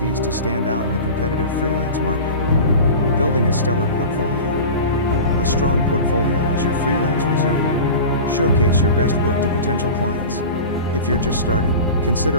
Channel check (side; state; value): both; inverted; correlation -0.32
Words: to stand out in the competitive freelance market. Building a stellar portfolio. A strong portfolio is your freelance resume. Showcase your best work to potential clients. If you're just starting,